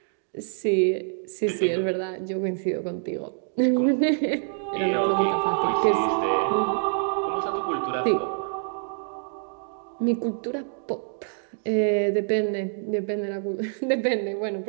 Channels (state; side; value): silent; left; digital silence